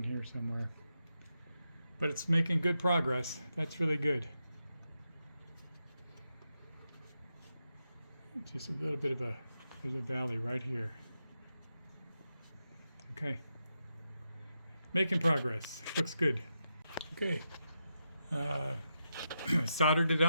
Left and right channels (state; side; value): inverted; both; correlation -0.86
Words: here somewhere. But it's making good progress. That's really good. Just a little bit of there's a valley right here. Okay. Making progress. Looks good. Okay. Soldered it